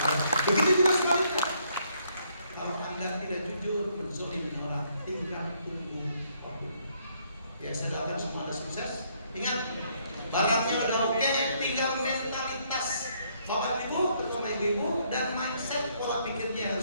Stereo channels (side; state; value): both; inverted; correlation -0.70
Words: begitu juga sebaliknya. Kalau Anda tidak jujur, menzolimi orang, tinggal tunggu waktu. Ya, saya doakan semua Anda sukses. Ingat, barangnya udah oke, tinggal mentalitas Bapak Ibu, terutama ibu-ibu, dan mindset pola pikirnya